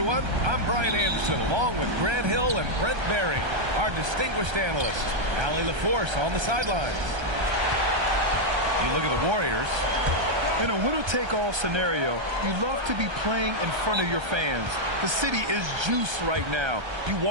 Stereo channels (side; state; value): left; late; 1.3 ms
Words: I'm Brian Anderson, along with Grant Hill and Brent Berry, our distinguished analyst. Allie LaForce on the sidelines. You look at the Warriors. In a winner-take-all scenario, you love to be playing in front of your fans. The city is juiced right now. You